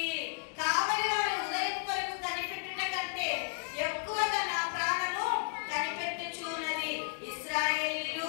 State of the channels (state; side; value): quieter; right; 37.7 dB